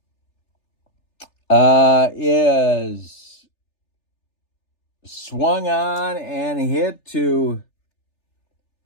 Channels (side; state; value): right; late; 3.4 ms